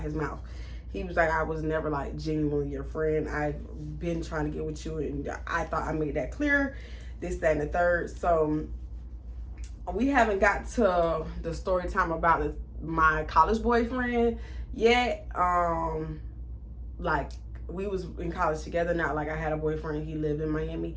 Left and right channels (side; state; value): both; identical; correlation 1.00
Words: his mouth. He was like, I was never like genuinely your friend. I've been trying to get with you, and I thought I made that clear. This, that, and the third. So we haven't got to the story time about my college boyfriend yet. Like, we was in college together, not like I had a boyfriend. He lived in Miami.